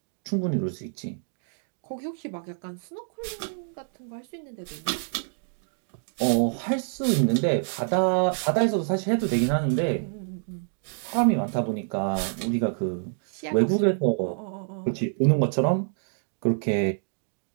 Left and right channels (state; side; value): silent; left; 60 dB below the other